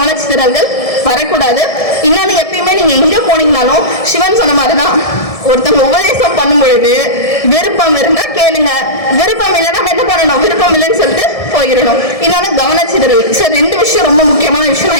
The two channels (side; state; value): right; late; 1.7 ms